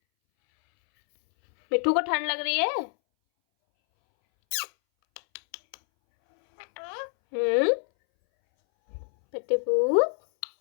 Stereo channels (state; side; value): silent; right; 61 dB below the other